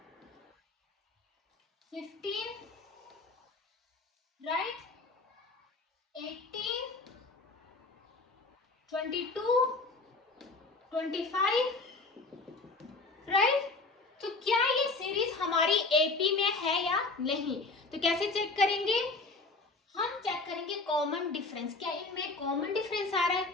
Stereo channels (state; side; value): quieter; right; 3.6 dB